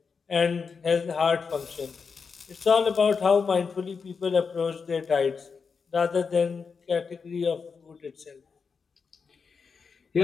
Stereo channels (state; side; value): quieter; right; 5.4 dB